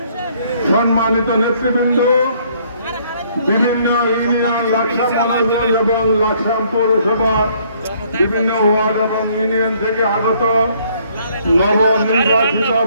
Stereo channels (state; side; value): inverted; both; correlation -0.64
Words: সম্মানিত নেতৃবৃন্দ, বিভিন্ন ইউনিয়ন, লাকসা মনোনয়ন এবং লাকসা পৌরসভা বিভিন্ন ওয়ার্ড এবং ইউনিয়ন থেকে আগত নবনির্বাচিত